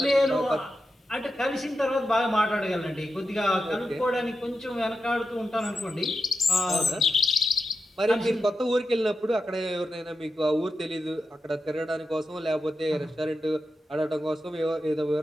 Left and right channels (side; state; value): both; normal; correlation 0.89